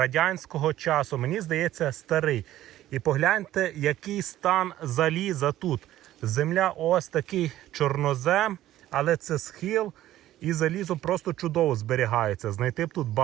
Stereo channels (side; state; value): left; quieter; 13.9 dB